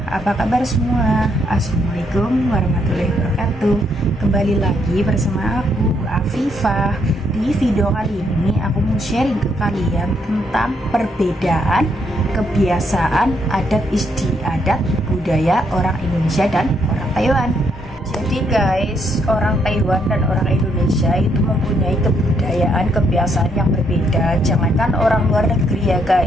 apa kabar semua? Assalamualaikum warahmatullahi wabarakatuh. Kembali lagi bersama aku, Afifah. Di video kali ini aku mau sharing ke kalian tentang perbedaan kebiasaan, adat istiadat, budaya orang Indonesia dan orang Taiwan. Jadi guys, orang Taiwan dan orang Indonesia itu mempunyai kebudayaan, kebiasaan yang berbeda. Jangankan orang luar negeri ya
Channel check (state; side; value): normal; both; correlation 0.74